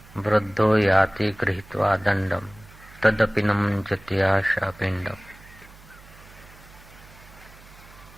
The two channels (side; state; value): right; noise; hum, 22 dB below the sound